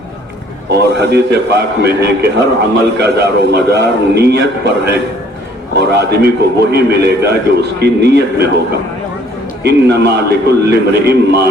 اور حدیث پاک میں ہے کہ ہر عمل کا دار و مدار نیت پر ہے، اور آدمی کو وہی ملے گا جو اس کی نیت میں ہوگا. انما لکل امرئ ما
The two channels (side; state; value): both; normal; correlation 0.59